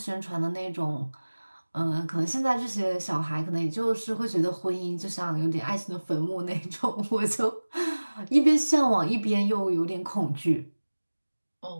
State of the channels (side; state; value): both; inverted; correlation -1.00